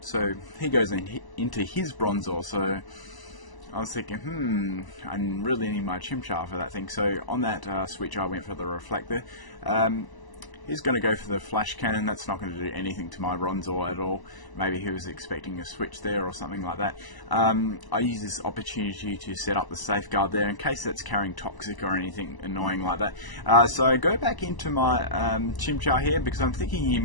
So he goes into his Bronzor, so I was thinking, I really need my Chimchar for that thing. So on that switch I went for the Reflector. He's going to go for the Flash Cannon. That's not going to do anything to my Bronzor at all. Maybe he was expecting a switch there or something like that. I use this opportunity to set up the Safeguard there in case that's carrying Toxic or anything annoying like that. So I go back into my Chimchar here because I'm thinking he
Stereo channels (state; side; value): late; right; 1.0 ms